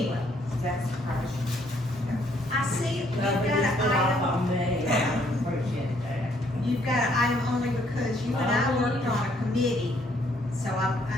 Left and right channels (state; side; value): normal; both; correlation 0.67